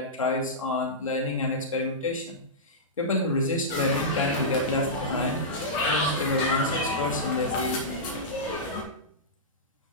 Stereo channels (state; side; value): normal; both; correlation -0.14